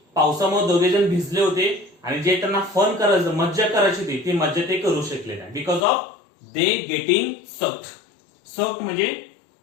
पावसामुळे दोघे जण भिजले होते आणि जे त्यांना फन करायचं, मज्जा करायची होती, ती मज्जा ते करू शकले नाही. Because of they getting soaked. Soaked म्हणजे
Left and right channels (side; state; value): right; drops out; at 5.8 s